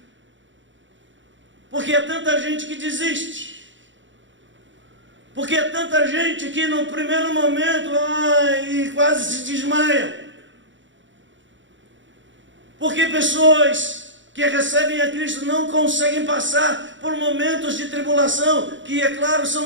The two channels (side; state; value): left; late; 0.55 ms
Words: Porque há tanta gente que desiste. Porque há tanta gente que no primeiro momento quase se desmaia. Porque pessoas que recebem a Cristo não conseguem passar por momentos de tribulação, que é claro, são